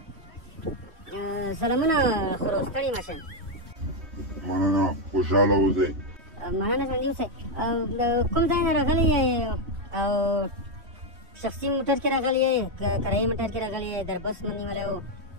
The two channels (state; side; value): late; left; 3.1 ms